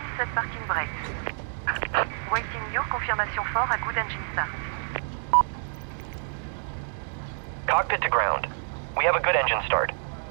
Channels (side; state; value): left; silent; digital silence